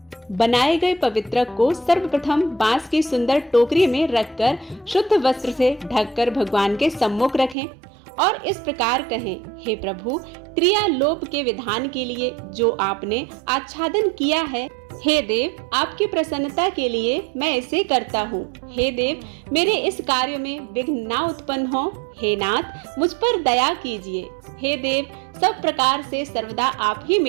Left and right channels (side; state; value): left; drops out; at 7.6 s